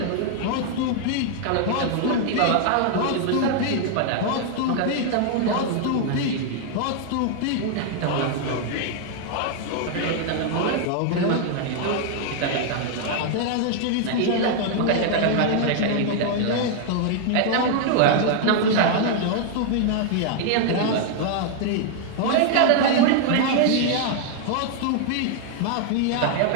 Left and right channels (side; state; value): both; different; correlation 0.00